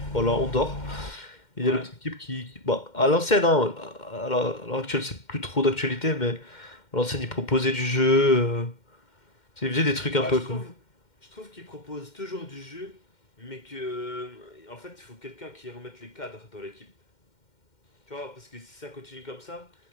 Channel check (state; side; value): late; right; 2.1 ms